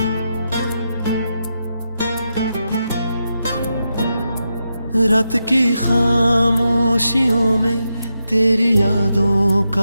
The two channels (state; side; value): inverted; both; correlation -0.86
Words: रात की खामोशियों में तेरी यादों